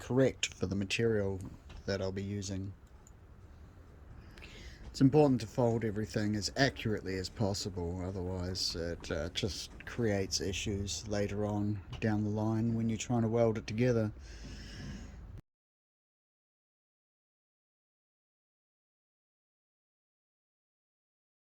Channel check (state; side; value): identical; both; correlation 1.00